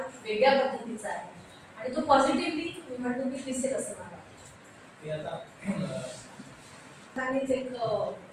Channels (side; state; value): both; identical; correlation 1.00